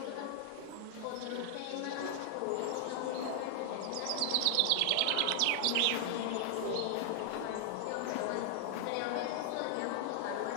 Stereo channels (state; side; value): different; both; correlation 0.00